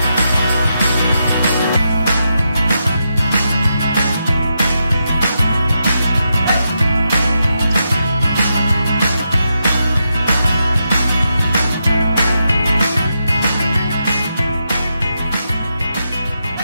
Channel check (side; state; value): both; inverted; correlation -0.84